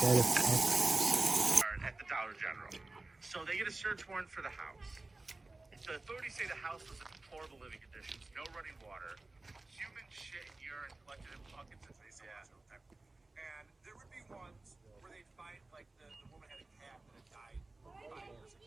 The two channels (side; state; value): left; quieter; 3.2 dB